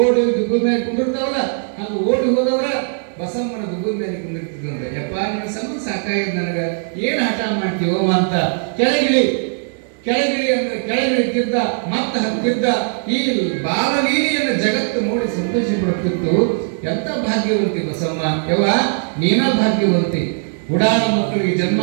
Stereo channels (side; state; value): left; silent; 64 dB below the other